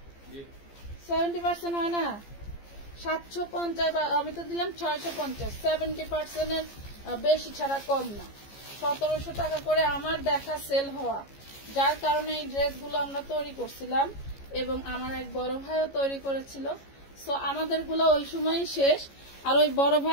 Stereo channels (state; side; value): late; right; 15 ms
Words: 70% হয় না, 750 বা আমি তো দিলাম 650, 70% এর বেশি ছাড়া কম না। 1700 টাকা করে আমার দেখা সেল হওয়া, যার কারণে এই ড্রেসগুলো আমরা তৈরি করছিলাম এবং আমার এক বড় ভাইও তৈরি করেছিল। সো আমাদের গুলো ওই সময় শেষ, আর ওই বড়